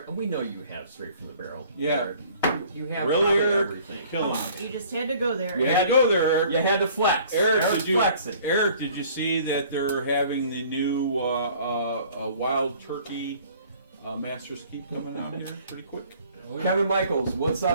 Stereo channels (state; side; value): inverted; both; correlation -0.53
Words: We know you have straight from the barrel. Yeah. Eric. You have Really, probably Eric? everything. Kill him. You just had to go there. You had to go there, Eric. You had to flex. Eric, Eric's flexing. Eric, did you see that they're having the new wild turkey Master's Keep coming out here pretty quick? Oh, yeah. Kevin Michaels, what's